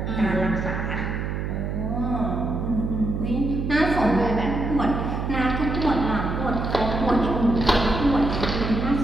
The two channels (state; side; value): noise; right; hum, 3 dB below the sound